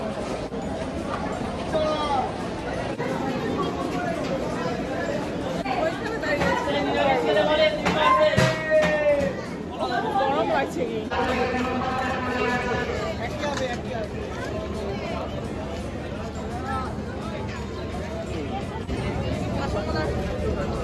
গরম লাগছে কি?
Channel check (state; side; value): identical; both; correlation 1.00